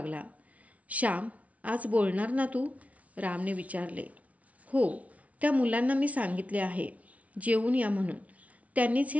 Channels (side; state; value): left; late; 0.067 ms